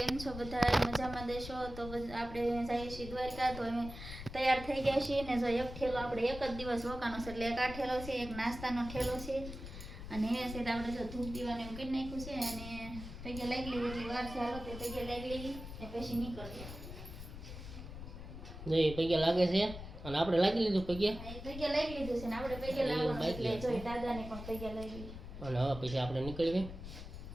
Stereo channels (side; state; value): left; noise; rumble, 10 dB below the sound